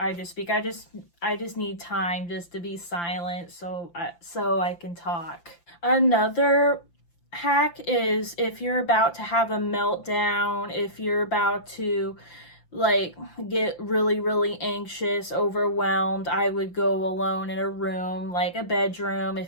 just speak. I just need time just to be silent so I can talk. Another hack is if you're about to have a meltdown, if you're about to get really, really anxious, overwhelmed, I would go alone in a room, like a bedroom.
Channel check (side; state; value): right; late; 5.8 ms